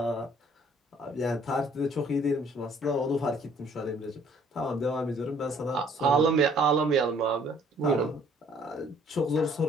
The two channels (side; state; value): both; normal; correlation 0.60